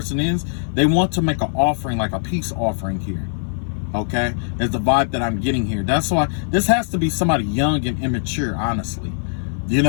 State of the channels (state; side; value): silent; right; 57 dB below the other